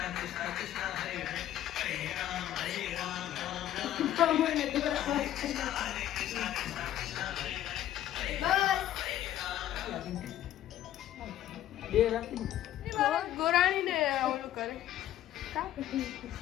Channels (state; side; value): quieter; right; 12.5 dB